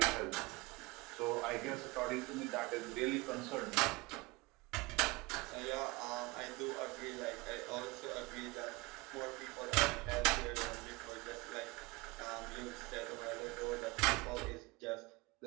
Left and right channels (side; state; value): left; quieter; 24.0 dB